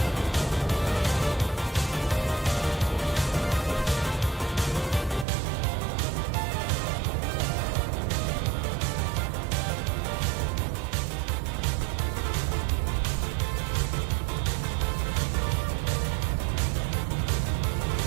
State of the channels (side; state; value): left; drops out; at 5.2 s